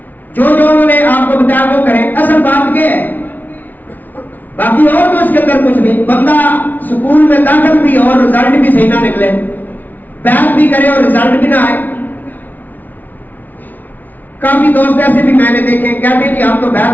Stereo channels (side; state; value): right; late; 0.081 ms